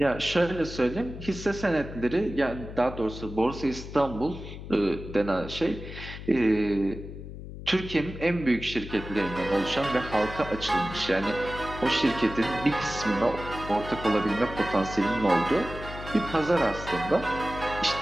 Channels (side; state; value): left; noise; hum, 11 dB below the sound